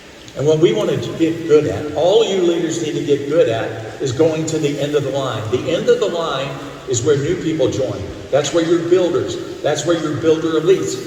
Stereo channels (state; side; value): identical; both; correlation 1.00